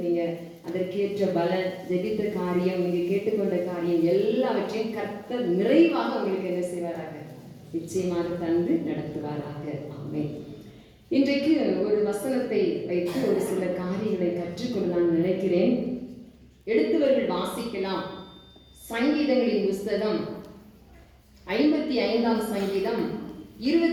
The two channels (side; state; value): both; identical; correlation 1.00